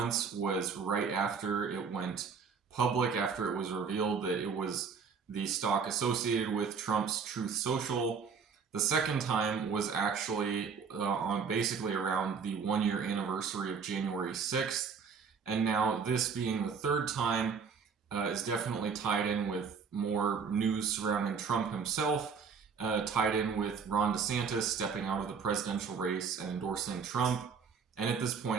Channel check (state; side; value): quieter; left; 5.9 dB